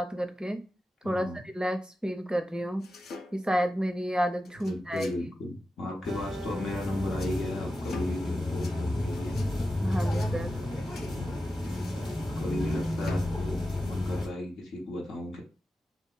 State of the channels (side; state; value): both; normal; correlation 0.92